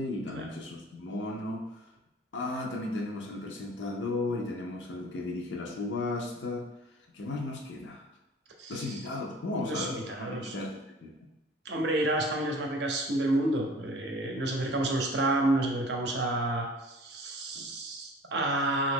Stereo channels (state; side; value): normal; both; correlation 0.45